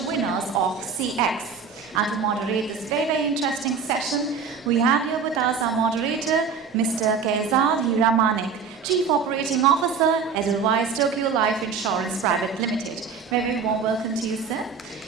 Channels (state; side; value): quieter; left; 5.8 dB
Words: winners of CX. And to moderate this very interesting session, we have here with us our moderator, Mr. Kayzad Hiramanek, Chief Operating Officer, Edelweiss Tokio Life Insurance Private Limited. Very warm welcome to you, sir.